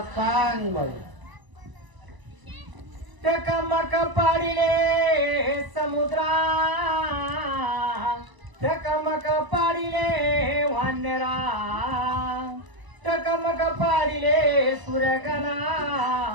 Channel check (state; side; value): late; left; 1.0 ms